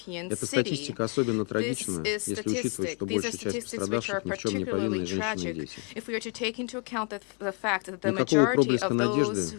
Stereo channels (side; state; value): right; quieter; 38.8 dB